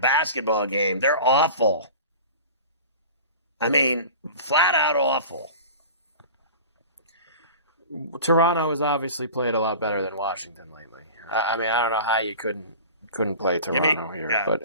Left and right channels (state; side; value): inverted; both; correlation -0.37